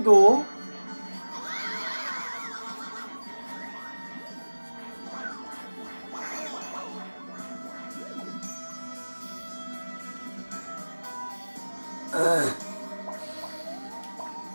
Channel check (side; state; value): both; inverted; correlation -1.00